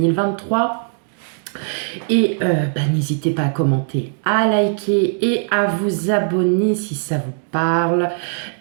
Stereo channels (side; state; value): left; silent; digital silence